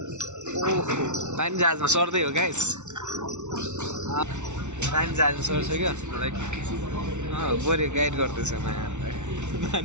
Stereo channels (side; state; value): left; late; 0.83 ms